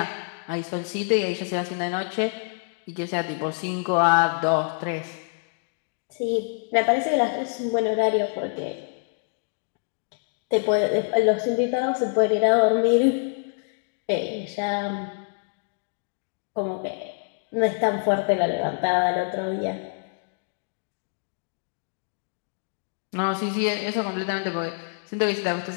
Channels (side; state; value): right; silent; 61 dB below the other